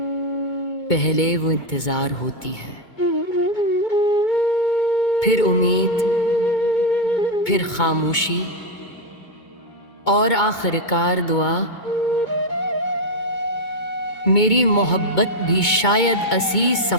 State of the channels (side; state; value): right; late; 2.2 ms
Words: पहले वो इंतजार होती है, फिर उम्मीद, फिर खामोशी और आखिरकार दुआ। मेरी मोहब्बत भी शायद इसी